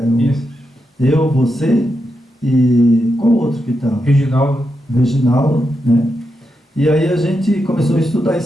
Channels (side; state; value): both; normal; correlation 0.85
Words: Eu, você e qual outro que estava? Reginaldo, né? E aí a gente começou a estudar